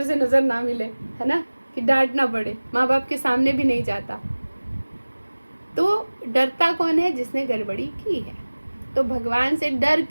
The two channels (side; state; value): both; inverted; correlation -1.00